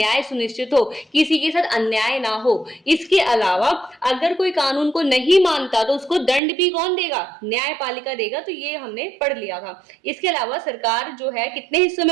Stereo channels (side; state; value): left; drops out; at 6.4 s